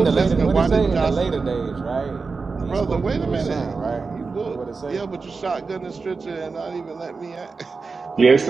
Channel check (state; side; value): quieter; left; 4.5 dB